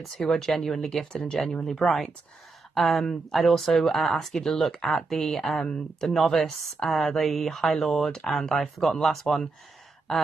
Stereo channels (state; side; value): quieter; left; 3.9 dB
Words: who are genuinely gifted and genuinely bright. I'd also ask you to look at the novice, the High Lord, and I've forgotten the last one,